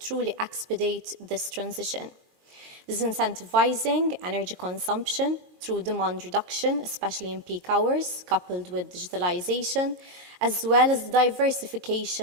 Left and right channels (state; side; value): late; left; 20 ms